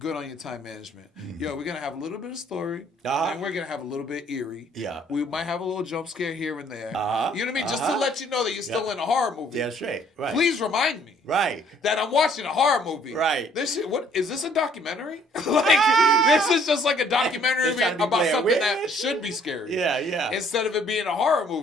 on your time management. Mm-hmm. Yo, we're gonna have a little bit of story, and we're gonna have a little bit eerie. Yeah, we might have a little jump scare here and there. You know what I mean? Just to let you know that you're still in a horror movie. Yeah, straight. Right. Please remind me. Right. That I'm watching a horror movie. Right. This shit, what is this, a documentary? This is just like a documentary about something that should be scary. Yeah, yeah. Instead of it being a horror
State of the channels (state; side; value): normal; both; correlation 0.61